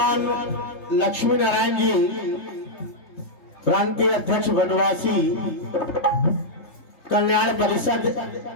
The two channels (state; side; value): late; right; 3.2 ms